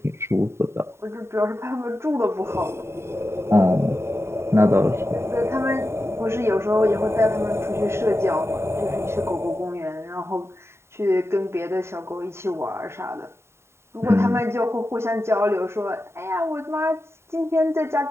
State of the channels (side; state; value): left; late; 0.13 ms